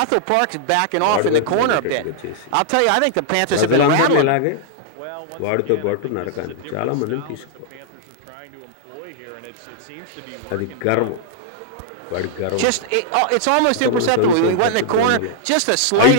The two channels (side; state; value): both; different; correlation -0.01